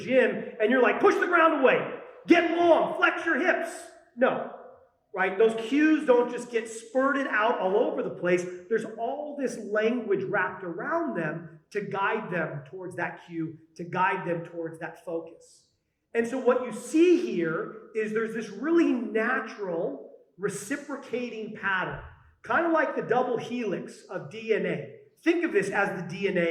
and you're like, push the ground away, get long, flex your hips. No, right? Those cues don't just get spurted out all over the place. There's all this language wrapped around them to guide them towards that cue, to guide them towards that focus. And so what you see here is there's this really natural reciprocating pattern, kind of like the double helix of DNA. Think of this as the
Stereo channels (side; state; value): both; identical; correlation 1.00